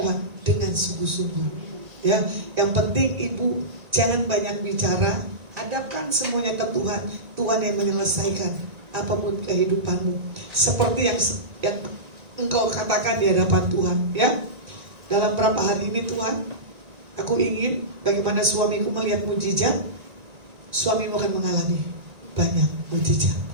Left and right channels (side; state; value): left; late; 1.9 ms